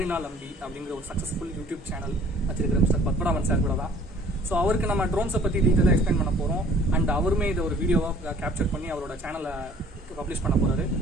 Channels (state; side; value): normal; both; correlation 0.54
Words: Ambi அப்படிங்கிற ஒரு சக்சஸ்ஃபுல் யூடியூப் சேனல் வச்சிருக்கிற மிஸ்டர் பத்மநாபன் சார் கூட தான். ஸோ அவருக்கு நம்ம ட்ரோன்ஸை பற்றி டீட்டெயிலாக எக்ஸ்பிளைன் பண்ண போகிறோம். அண்ட் அவருமே இதை ஒரு வீடியோவாக கேப்சர் பண்ணி அவரோட சேனலை பப்ளிஷ் பண்ண போகிறாரு.